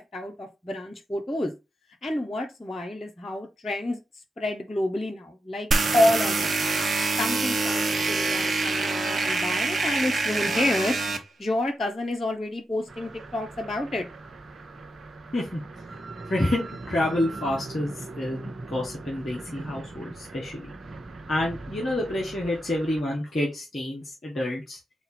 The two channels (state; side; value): normal; both; correlation 0.86